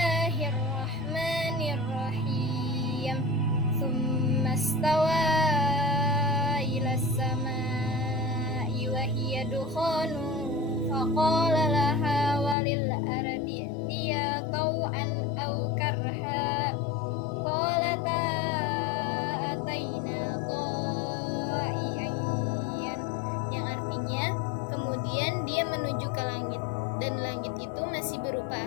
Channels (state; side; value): drops out; right; at 12.6 s